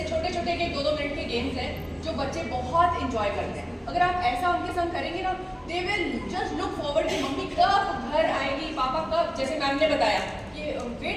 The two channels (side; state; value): both; identical; correlation 1.00